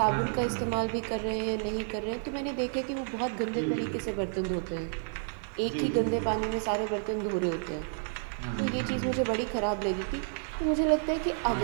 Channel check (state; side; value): silent; left; 55 dB below the other